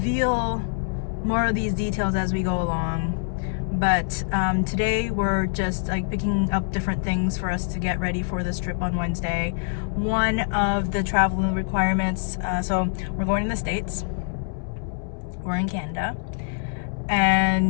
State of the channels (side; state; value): right; silent; digital silence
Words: more of these details as we go along. But today we're just like picking up different things for us to get ready for this trip on Wednesday. One of the travel requirements, so we're going to the States. We're in Canada.